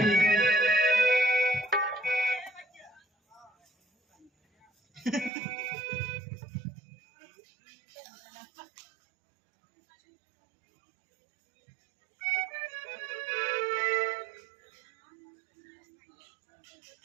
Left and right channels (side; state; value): left; drops out; at 5.3 s